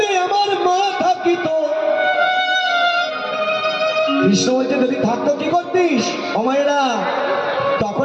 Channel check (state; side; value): identical; both; correlation 1.00